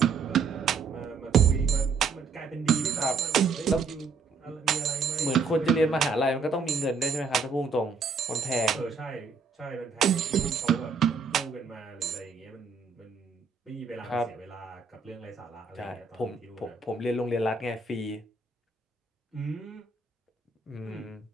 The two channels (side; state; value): left; quieter; 4.7 dB